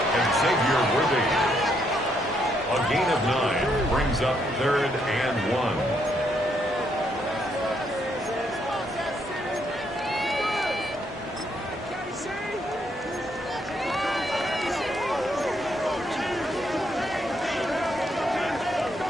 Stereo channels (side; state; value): both; normal; correlation 0.74